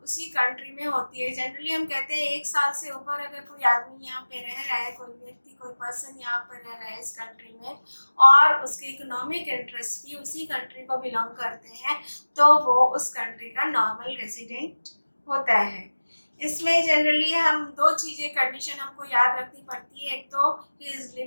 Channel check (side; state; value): both; inverted; correlation -1.00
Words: उसी कंट्री में होती है। जनरली हम कहते हैं 1 साल से ऊपर अगर कोई आदमी यहाँ पे रह रहा है, कोई व्यक्ति कोई पर्सन यहाँ पर रह रहा है इस कंट्री में और उसके इकोनॉमिक इंटरेस्ट भी उसी कंट्री को बिलोंग करते हैं, तो वो उस कंट्री का नॉर्मल रेसिडेंट होता है। इसमें जनरली हम 2 चीज़ें कंडीशन हमको याद रखनी पड़ती है। एक तो he is